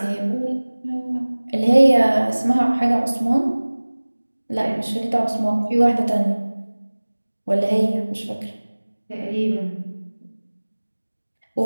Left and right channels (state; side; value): inverted; both; correlation -1.00